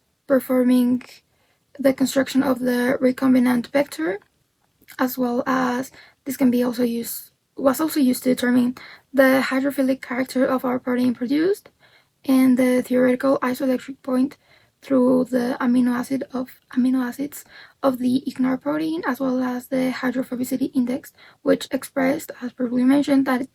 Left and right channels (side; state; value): both; identical; correlation 1.00